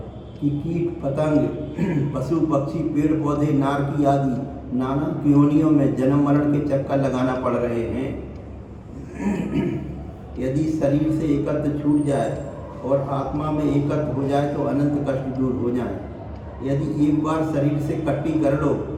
कि कीट पतंग, पशु पक्षी, पेड़ पौधे, नारकी आदि नाना योनियों में जन्म मरण के चक्कर लगाना पड़ रहे हैं। यदि शरीर से एकत्व छूट जाए और आत्मा में एकत्व हो जाए तो अनंत कष्ट दूर हो जाए। यदि एक बार शरीर से कट्टी कर लो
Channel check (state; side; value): identical; both; correlation 1.00